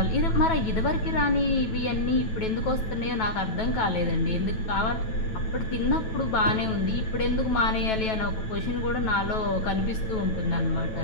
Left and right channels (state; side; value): late; right; 9.2 ms